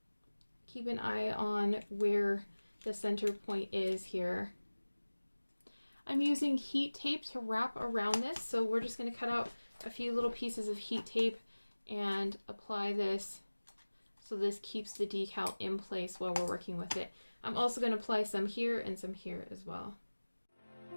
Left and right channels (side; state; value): both; inverted; correlation -1.00